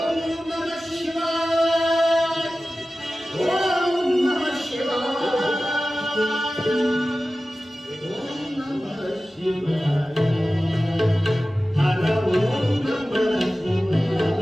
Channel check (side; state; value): both; normal; correlation 0.95